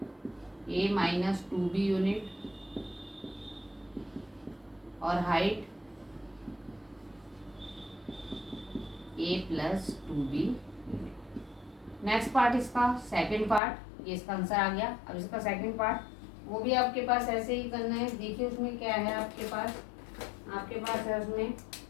a minus 2b unit और height a plus 2b unit. Next part इसका सेकंड पार्ट, ये इसका आंसर आ गया। अब इसका सेकंड पार्ट वो भी आपके पास ऐसे ही करना है। देखिए उसमें क्या है आपके पास है उसमें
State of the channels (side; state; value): right; drops out; at 13.6 s